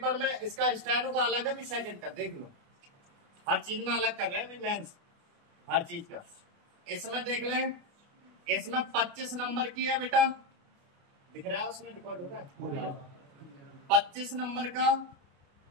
में इसका स्टेनो का अलग है भी सेकंड का, देख लो हर चीज में अलग कर रहे हैं मेंस, हर चीज का। इसमें देख लें, इसमें 25 नंबर की है बेटा, दिख रहा है उसमें रिकॉर्ड हो रहा है 25 नंबर का।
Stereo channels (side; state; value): left; late; 29 ms